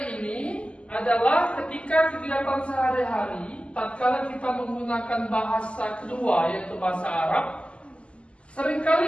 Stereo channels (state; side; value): late; right; 0.056 ms